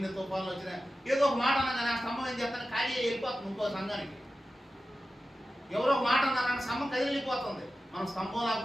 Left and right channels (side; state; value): both; normal; correlation 0.93